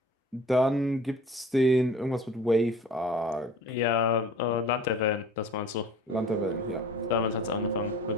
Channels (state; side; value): normal; both; correlation 0.45